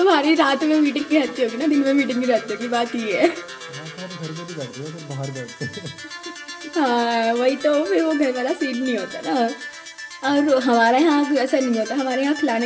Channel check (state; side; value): identical; both; correlation 1.00